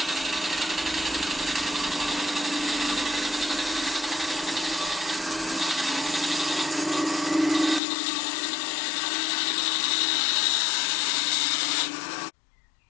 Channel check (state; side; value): drops out; right; at 7.8 s